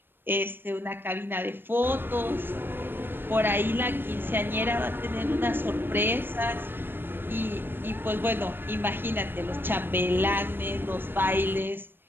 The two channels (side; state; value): left; late; 0.098 ms